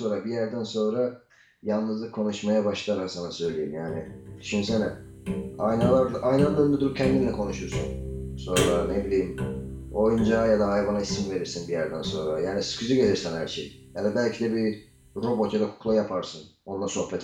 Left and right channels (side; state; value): both; identical; correlation 1.00